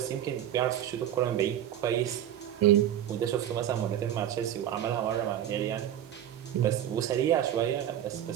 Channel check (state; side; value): quieter; left; 10.9 dB